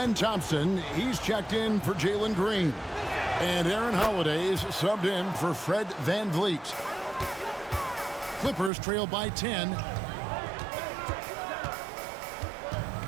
Thompson, he's checked in for Jalen Green. And Aaron Holiday's subbed in for Fred Van Vliet. Clippers trail by 10.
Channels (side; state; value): left; drops out; at 8.7 s